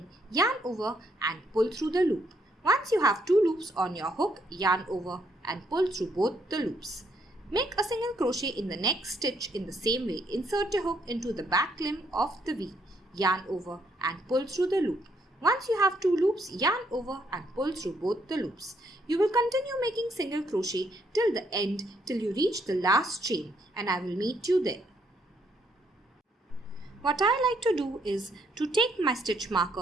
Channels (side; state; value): both; normal; correlation 0.72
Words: yarn over and pull through the loop. Once you have 2 loops on your hook, yarn over and pull through both the loops. Make a single crochet in the next stitch in the same way. Insert your hook into the back limb of the V. Yarn over and pull through the loop. Once you have 2 loops, yarn over and pull through both the loops. You will continue making single crochet till the end till you reach the last chain and I will meet you there. What I like to do is to take my stitch